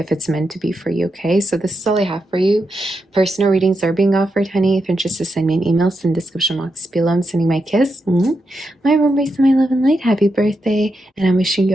it's meant to be for you, okay? So this is all I have for you. Personal readings are being offered, honey. If you're interested, send me an email, send description box below. I'm sending my kiss, my embrace, and my love and light. Happy birthday, and I'm wishing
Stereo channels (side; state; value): both; normal; correlation 0.85